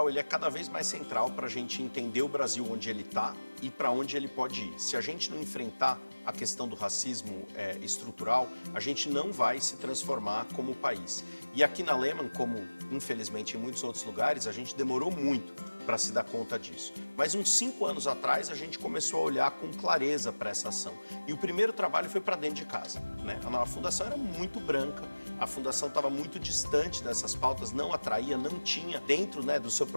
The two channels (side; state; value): both; inverted; correlation -1.00